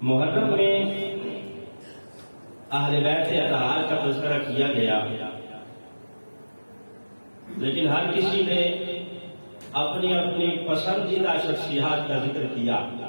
محرم میں اہل بیت اطہار کا تذکرہ کیا گیا، لیکن ہر کسی نے اپنی اپنی پسندیدہ شخصیات کا ذکر کیا،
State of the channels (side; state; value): both; inverted; correlation -1.00